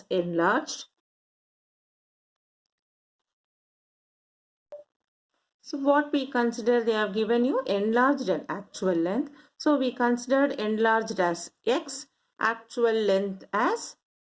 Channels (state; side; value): identical; both; correlation 1.00